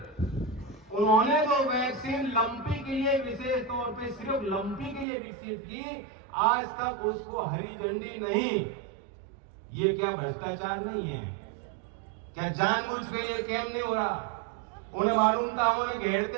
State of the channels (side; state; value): left; drops out; at 5.1 s